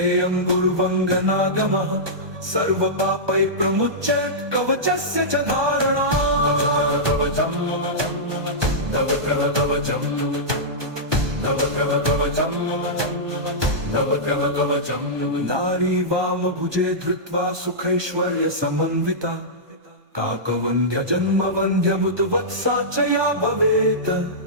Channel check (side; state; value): left; late; 1.2 ms